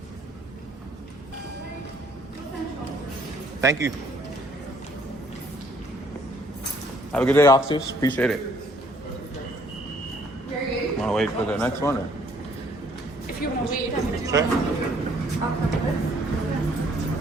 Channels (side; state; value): both; normal; correlation 0.63